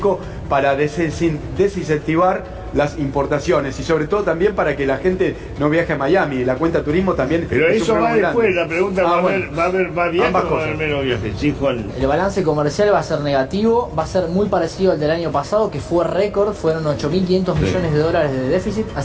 para desincentivar las importaciones y sobre todo también para que la gente no viaje a Miami. La cuenta turismo también. Pero es eso va después, la pregunta va a haber viajes ambas o va a haber cosas. menos viajes. Sí, Juan. El balance comercial va a ser negativo, va a ser muy parecido al del año pasado, que fue récord, fueron 8.500 millones de dólares de déficit,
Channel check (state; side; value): identical; both; correlation 1.00